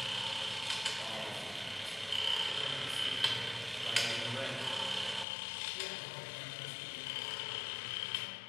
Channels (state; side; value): drops out; right; at 5.2 s